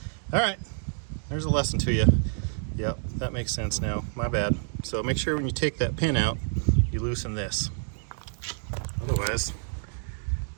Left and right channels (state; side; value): silent; left; 59 dB below the other